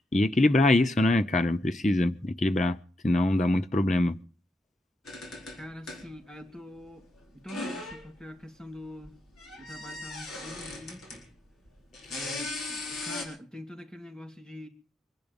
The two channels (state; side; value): normal; both; correlation 0.83